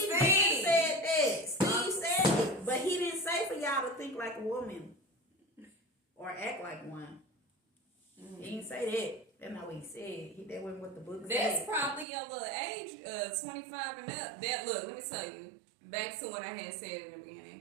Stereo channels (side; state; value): left; drops out; at 12.1 s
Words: said that. Steve said it. But he didn't say for y'all to think like a woman or act like one. Mm-hmm. He didn't say that. That's not what he said. That wasn't what the book said. That's probably your little age, 25 and up. Look, let me tell you. Back to what I had said in the